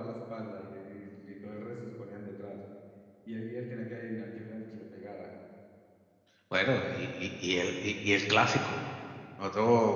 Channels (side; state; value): both; identical; correlation 1.00